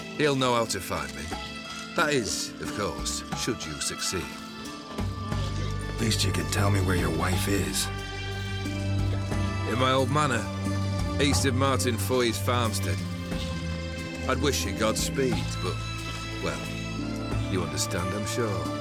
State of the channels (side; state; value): both; identical; correlation 1.00